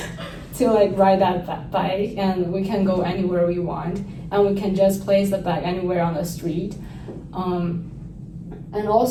to like ride that bike, and we can go anywhere we want, and we can just place the bike anywhere on the street. And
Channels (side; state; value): both; identical; correlation 1.00